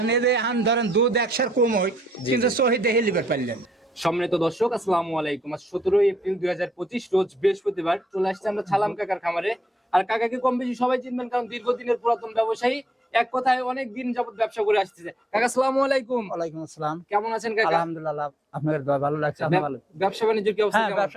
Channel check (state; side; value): normal; both; correlation 0.75